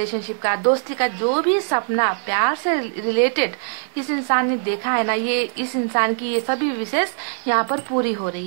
का, दोस्ती का, जो भी सपना प्यार से रिलेटेड इस इंसान ने देखा है ना, ये इस इंसान की ये सभी विशेष यहाँ पर पूरी हो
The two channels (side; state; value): left; silent; 65 dB below the other